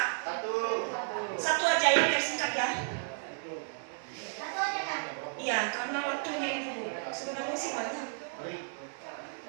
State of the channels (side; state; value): left; silent; 55 dB below the other